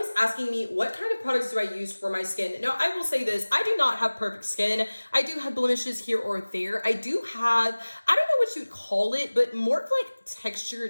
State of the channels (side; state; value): both; inverted; correlation -1.00